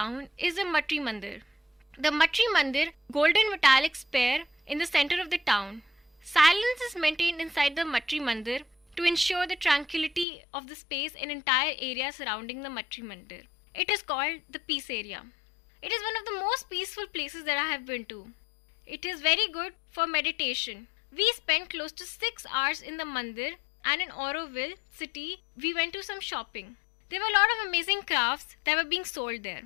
is the Matri Mandir. The Matri Mandir, golden metallic sphere in the center of the town. Silence is maintained inside the Matri Mandir to ensure the tranquility of the space and entire area surrounding the Matri Mandir. It is called the Peace Area. It is one of the most peaceful places that I have been to. It is very good for meditation. We spent close to 6 hours in the Mandir, and in Auroville city, we went to some shopping. There were a lot of amazing crafts that were being sold there.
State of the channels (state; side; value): drops out; right; at 10.2 s